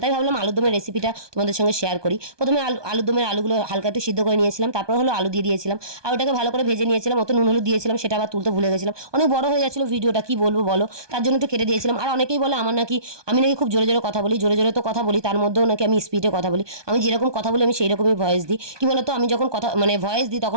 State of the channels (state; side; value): late; left; 1.2 ms